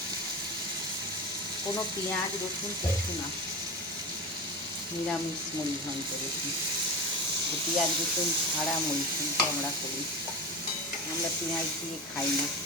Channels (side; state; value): both; normal; correlation 0.27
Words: কোনো পেঁয়াজ রসুন কিছু না, নিরামিষ মুড়ি ঘন্ট। দেখুন, পেঁয়াজ রসুন ছাড়া মুড়ি ঘন্ট আমরা করি, আমরা পেঁয়াজ দিয়ে খাই না।